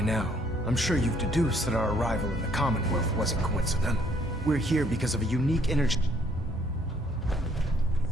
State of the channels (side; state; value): both; normal; correlation 0.65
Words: now, I'm sure you've deduced that our arrival in the Commonwealth wasn't coincidental. We're here because of a unique energy...